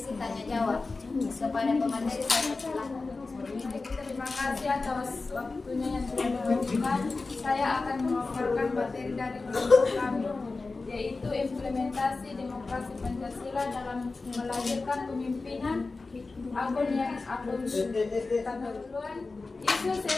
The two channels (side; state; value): right; quieter; 3.8 dB